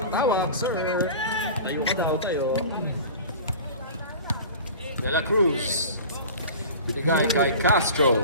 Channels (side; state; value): both; inverted; correlation -0.37